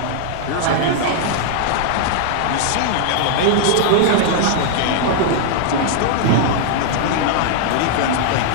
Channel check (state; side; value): different; both; correlation -0.01